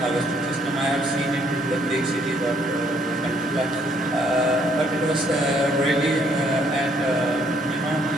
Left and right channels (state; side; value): normal; both; correlation 0.67